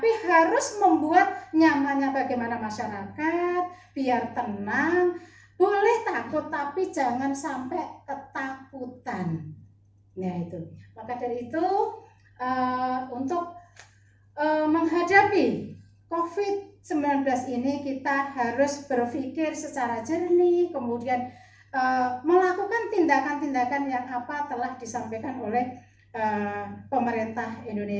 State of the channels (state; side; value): identical; both; correlation 1.00